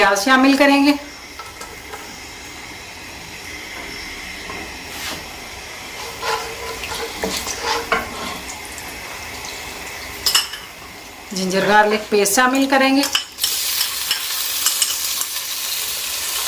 शामिल करेंगे। जिंजर गार्लिक पेस्ट शामिल करेंगे।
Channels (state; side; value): identical; both; correlation 1.00